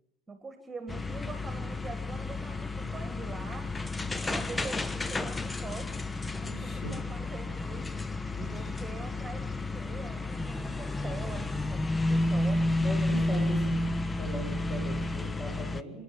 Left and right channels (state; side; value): normal; both; correlation 0.89